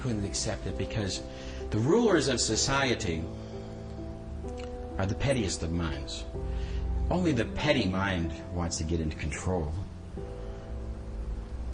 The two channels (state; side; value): identical; both; correlation 1.00